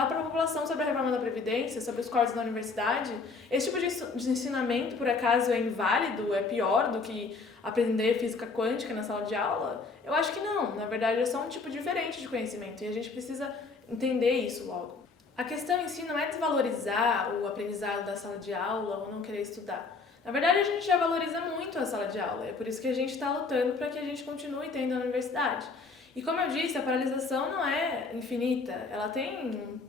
para a população sobre a reforma da Previdência, sobre os cortes da universidade. Esse tipo de ensinamento, por acaso, é inválido, é pior do que aprender física quântica na sala de aula? Eu acho que não. Na verdade, é só um tipo diferente de conhecimento e a gente precisa entender isso logo. A questão em si não é desvalorizar o aprendizado da sala de aula ou não querer estudar. Na verdade, a gente já valoriza muito a sala de aula, é por isso que a gente está lutando para que a gente continue tendo a universidade. E como eu disse, a paralisação não é infinita, ela tem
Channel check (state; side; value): quieter; right; 4.3 dB